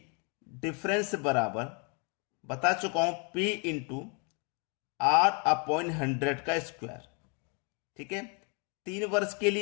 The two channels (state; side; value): quieter; right; 35.7 dB